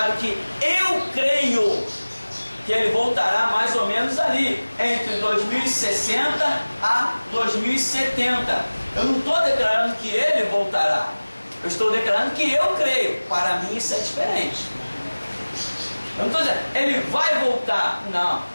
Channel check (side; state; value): both; inverted; correlation -1.00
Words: que eu creio que ele voltará mais ou menos ali, entre 2060 a 2070. Eu não estou declarando que ele voltará. Eu estou declarando que eu creio. Para mim isso é diferente. Eu não estou dizendo, ele vai voltar. Não.